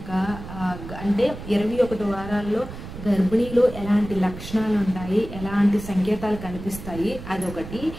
అంటే 21 వారాల్లో గర్భిణీలో ఎలాంటి లక్షణాలు ఉంటాయి, ఎలాంటి సంకేతాలు కనిపిస్తాయి అదొకటి.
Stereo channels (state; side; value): noise; right; rumble, 11 dB below the sound